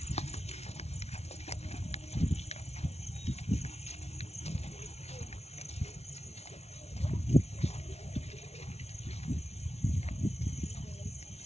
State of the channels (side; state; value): right; late; 0.31 ms